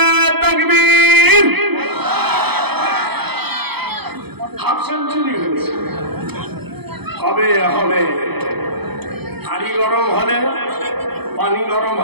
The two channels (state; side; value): late; left; 0.97 ms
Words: তাকবীর। হাফ সেঞ্চুরি হয়েছে। হবে হবে। হাড়ি গরম হলে পানি গরম